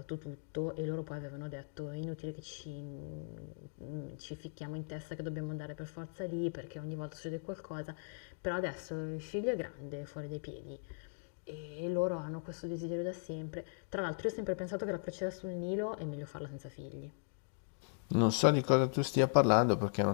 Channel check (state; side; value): silent; right; digital silence